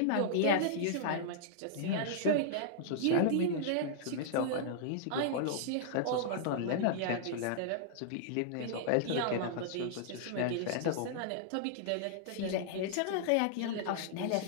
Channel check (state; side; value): different; both; correlation -0.01